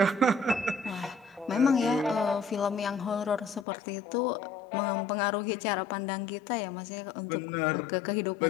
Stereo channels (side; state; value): right; drops out; at 3.7 s